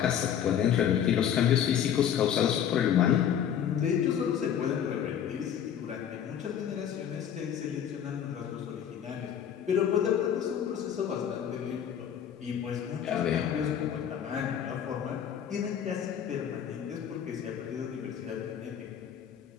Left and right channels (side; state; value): right; quieter; 9.1 dB